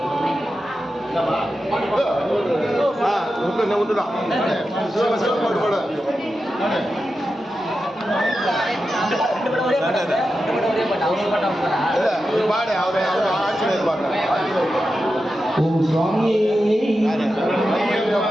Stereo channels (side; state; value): both; normal; correlation 0.90